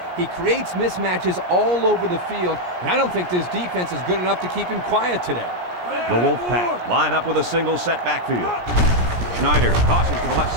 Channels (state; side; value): late; left; 17 ms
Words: He creates mismatches all over the field, and I don't think this defense is good enough to keep him quiet today. The Wolfpack line up with a single set backfield. Schneider tosses to the left